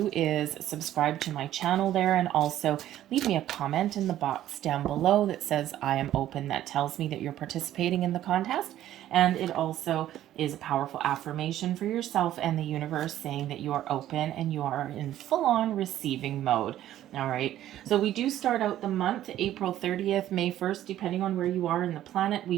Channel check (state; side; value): quieter; left; 12.7 dB